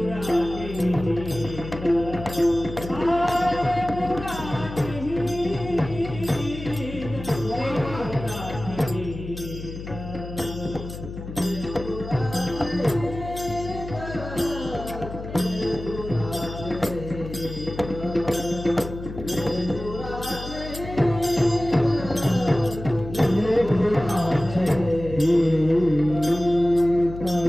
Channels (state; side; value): noise; left; hum, 10 dB below the sound